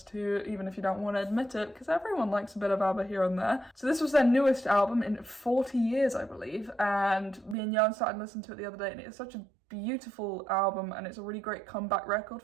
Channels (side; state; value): left; drops out; at 7.6 s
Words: too, even if you don't want to admit it, because everyone likes a bit of Abba here and there. So this was their newest album in 40 years, I believe, and me and Jan started listening to it the other day, and it's such a beautiful album, and it's a really great comeback record